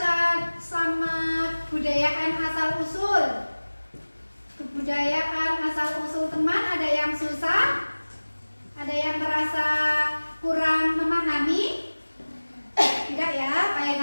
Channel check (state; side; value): inverted; both; correlation -1.00